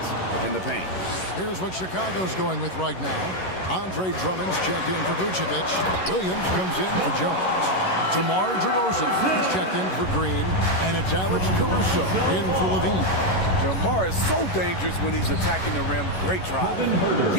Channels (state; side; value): late; right; 11 ms